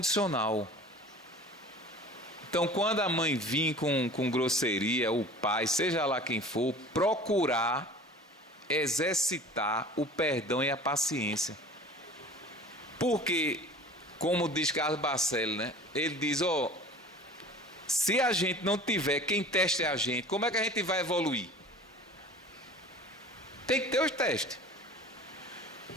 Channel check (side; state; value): both; normal; correlation 0.42